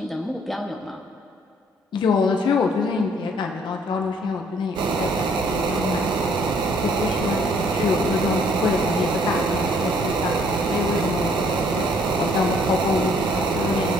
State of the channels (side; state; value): both; normal; correlation 0.62